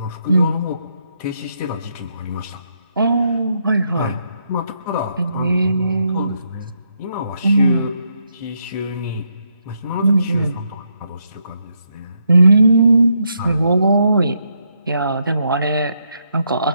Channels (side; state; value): both; inverted; correlation -0.78